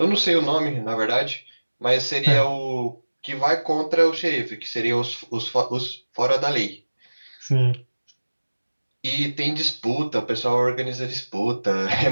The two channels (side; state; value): both; inverted; correlation -1.00